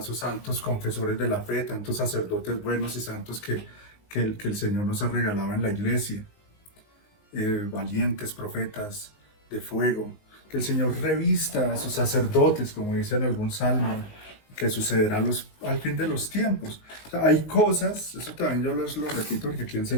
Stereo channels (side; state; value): right; late; 19 ms